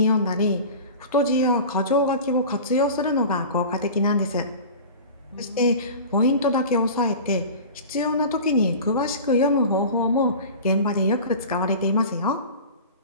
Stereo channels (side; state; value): both; inverted; correlation -0.36